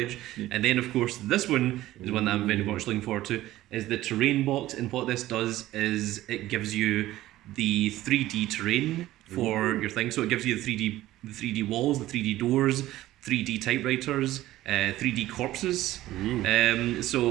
And then of course this one is one that I'm very much looking forward to, is the terrain box. And what this does is it gives you the 3D terrain for your thing. So it gives you the 3D walls, the 3D doors, 3D typewriters, 3D corpses.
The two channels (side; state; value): left; quieter; 15.4 dB